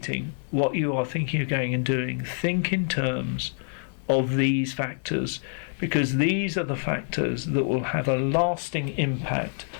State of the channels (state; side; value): silent; right; 59 dB below the other